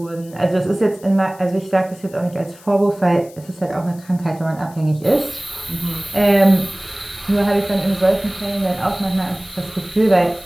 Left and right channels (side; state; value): left; noise; hiss, 24 dB below the sound